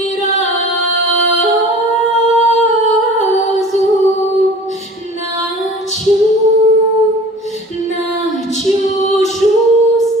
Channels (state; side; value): normal; both; correlation 0.43